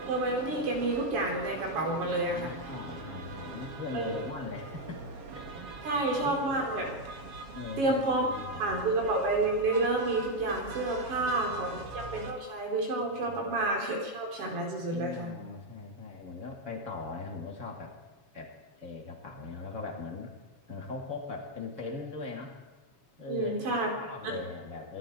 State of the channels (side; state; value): left; late; 7.2 ms